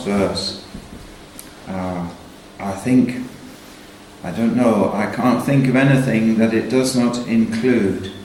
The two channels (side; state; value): both; identical; correlation 1.00